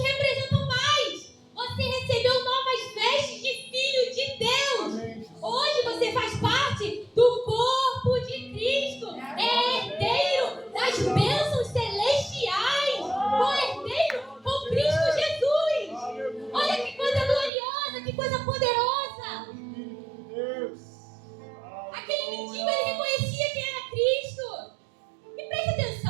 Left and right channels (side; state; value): left; drops out; at 17.5 s